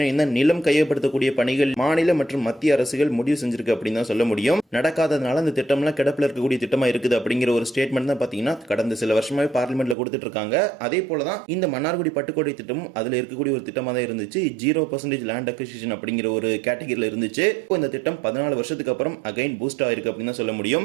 இந்த நிலம் கையகப்படுத்தக்கூடிய பணிகள் மாநில மற்றும் மத்திய அரசுகள் முடிவு செஞ்சிருக்கு அப்படின்னு தான் சொல்ல முடியும். நடக்காததுனால இந்த திட்டம்லாம் கிடப்பில் இருக்கக்கூடிய திட்டமா இருக்குது அப்படிங்கிற ஒரு ஸ்டேட்மெண்ட் தான் பார்த்தீங்கன்னா கடந்த சில வருஷமாவே பார்லிமெண்ட்ல கொடுத்துட்டு இருக்காங்க. அதே போல தான் இந்த மன்னார்குடி பட்டுக்கோட்டை திட்டமும் அதுல இருக்கக்கூடிய ஒரு திட்டமா தான் இருந்துச்சு. 0% லேண்ட் அக்விசிஷன் அப்படிங்கிற ஒரு கேட்டகரியில இருந்துச்சு. இந்த திட்டம் 14 வருஷத்துக்கு அப்புறம் அகைன் பூஸ்ட் ஆயிருக்கு அப்படின்னு தான் சொல்ல முடியும்.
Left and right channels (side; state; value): left; drops out; at 10.0 s